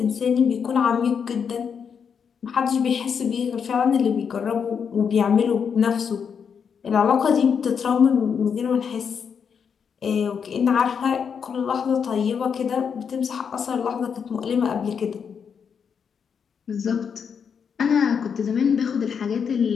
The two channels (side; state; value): right; quieter; 6.8 dB